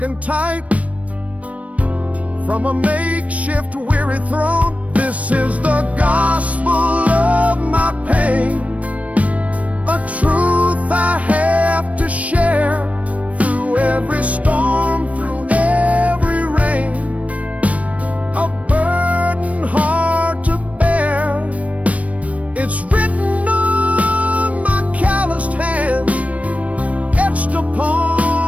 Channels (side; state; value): left; late; 0.066 ms